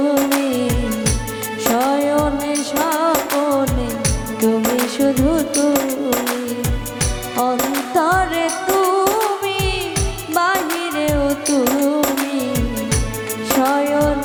শয়নে স্বপনে তুমি শুধু তুমি, অন্তরে তুমি, বাহিরেও তুমি,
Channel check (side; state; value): both; identical; correlation 1.00